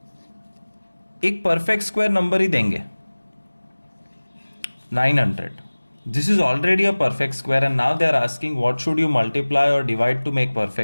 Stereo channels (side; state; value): both; inverted; correlation -1.00